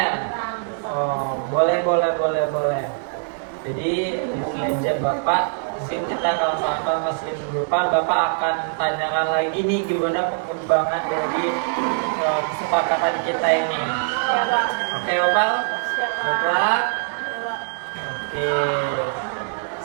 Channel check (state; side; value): silent; left; digital silence